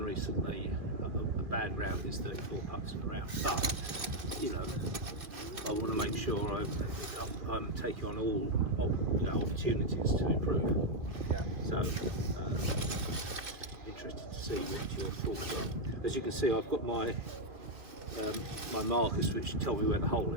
recently. A bad round is 34 putts in a round, but you know, I want to make sure I'm taking on all opportunities to improve. Yeah. So interested to see what your thoughts are. As you can see, I've got my my markers which tell me where the hole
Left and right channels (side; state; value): left; late; 2.4 ms